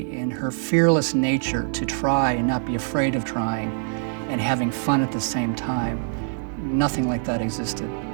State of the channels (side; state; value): left; silent; 63 dB below the other